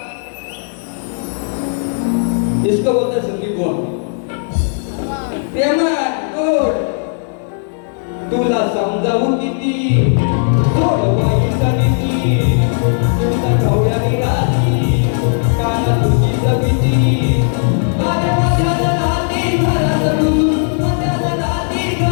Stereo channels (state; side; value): silent; right; 67 dB below the other